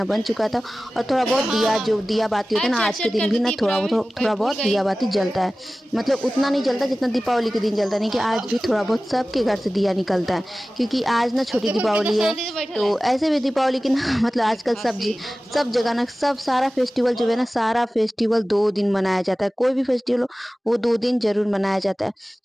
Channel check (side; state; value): both; normal; correlation 0.97